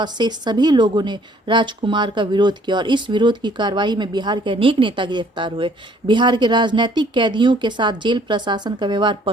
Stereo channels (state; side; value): normal; both; correlation 0.60